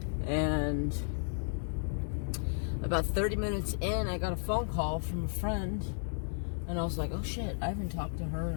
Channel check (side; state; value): right; silent; digital silence